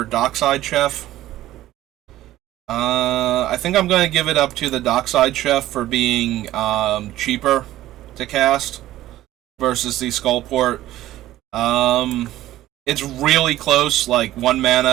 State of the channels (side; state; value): left; quieter; 14.7 dB